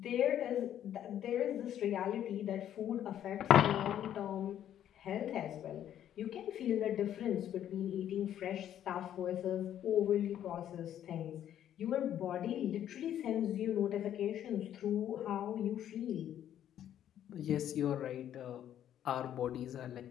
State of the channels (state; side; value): quieter; right; 10.7 dB